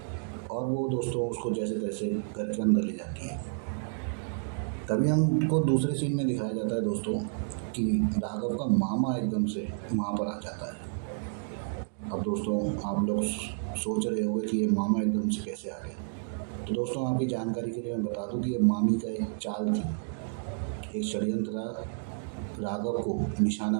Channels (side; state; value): left; silent; digital silence